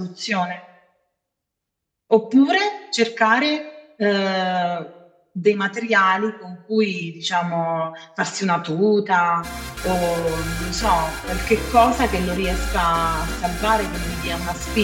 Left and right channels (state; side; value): identical; both; correlation 1.00